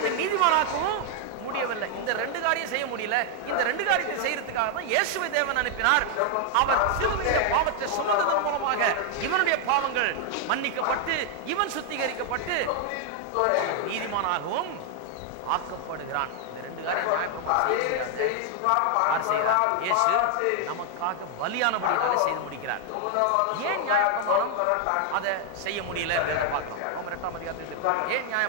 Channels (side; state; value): both; different; correlation 0.00